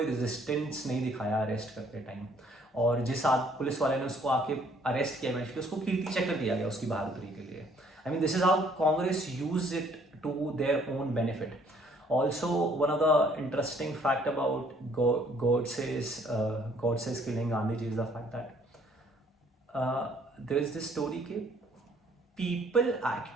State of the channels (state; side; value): normal; both; correlation 0.62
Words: रेजिस्टेंस नहीं दिखाया अरेस्ट करते टाइम, और जिस पुलिस वाले ने उसको आके अरेस्ट किया इवेंचुअली उसको कीर्ति चक्र दिया गया उसकी बहादुरी के लिए। I mean this is how Congress use it to their own benefit. Also, one of the interesting fact about Godse's killing Gandhiji is the fact that there is this story that people